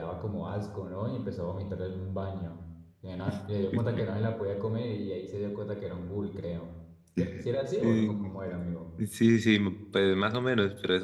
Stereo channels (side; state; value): both; identical; correlation 1.00